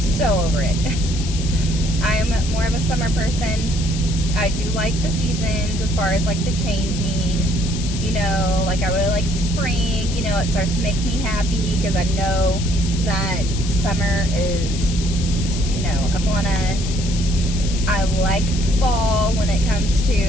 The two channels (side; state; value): left; noise; hiss, 10 dB below the sound